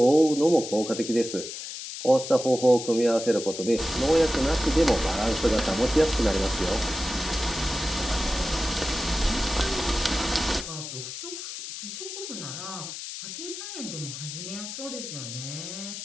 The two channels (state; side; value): noise; left; hiss, 8 dB below the sound